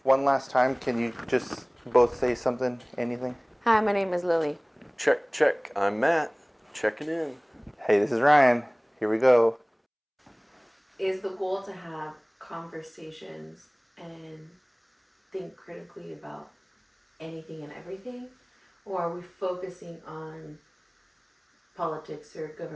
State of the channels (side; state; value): both; identical; correlation 1.00